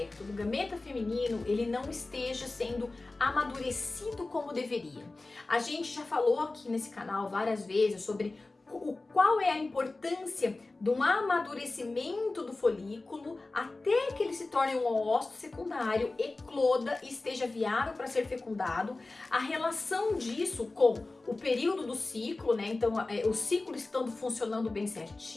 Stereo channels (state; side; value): quieter; right; 3.3 dB